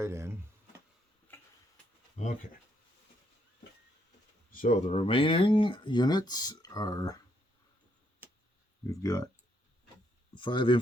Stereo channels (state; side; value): normal; both; correlation 0.74